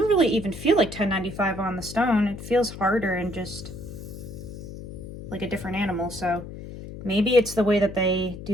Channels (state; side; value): noise; left; hum, 11 dB below the sound